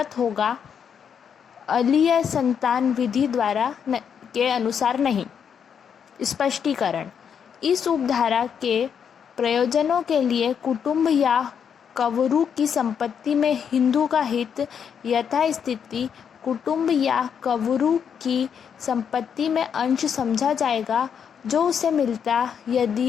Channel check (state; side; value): quieter; right; 7.5 dB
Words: होगा, अलीय संतान विधि द्वारा के अनुसार नहीं। स्पष्टीकरण। इस उपधारा के प्रयोजनों के लिए कुटुंब या कवरू की संपत्ति में हिंदू का हित यथास्थिति कुटुंब या कवरू की संपत्ति में अंश समझा जाएगा जो उसे मिलता